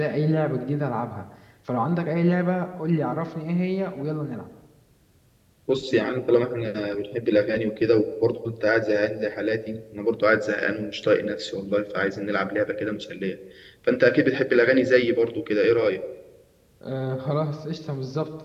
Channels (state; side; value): identical; both; correlation 1.00